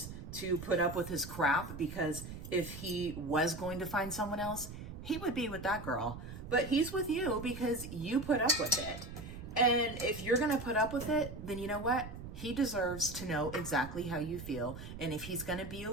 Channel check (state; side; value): noise; right; rumble, 10 dB below the sound